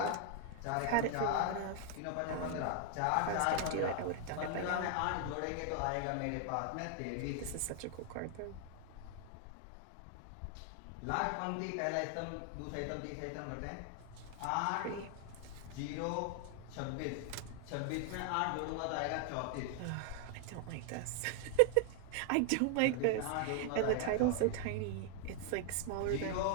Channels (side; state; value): both; different; correlation 0.00